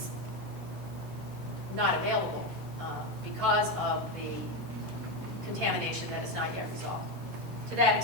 not available because of the contamination that is not yet resolved. To that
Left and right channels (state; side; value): normal; both; correlation 0.12